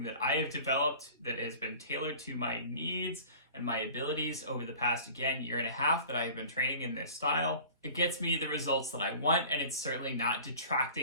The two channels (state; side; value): inverted; both; correlation -0.43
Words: that I have developed that has been tailored to my needs and my abilities over the past, again, year and a half that I have been training in this style. It gets me the results that I want, and it's certainly not